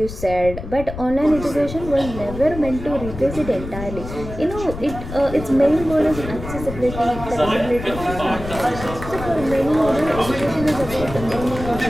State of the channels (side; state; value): left; noise; rumble, 10 dB below the sound